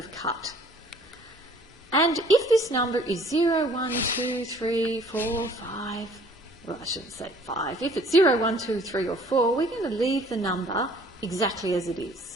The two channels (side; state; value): both; normal; correlation 0.55